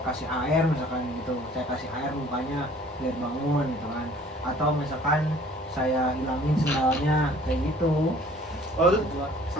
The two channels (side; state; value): both; normal; correlation 0.53